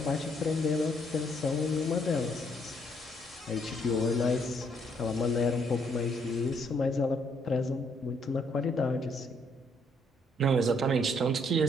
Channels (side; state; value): both; normal; correlation 0.69